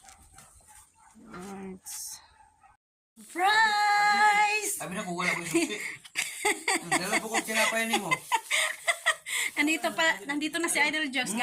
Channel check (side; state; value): both; identical; correlation 1.00